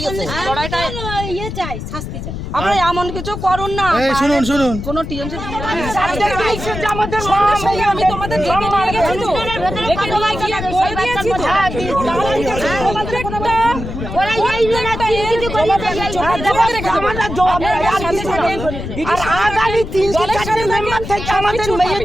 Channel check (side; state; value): left; noise; rumble, 7 dB below the sound